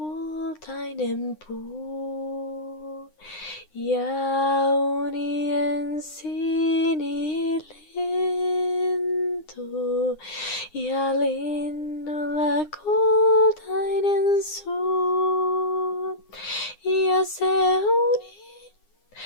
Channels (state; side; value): late; right; 9.8 ms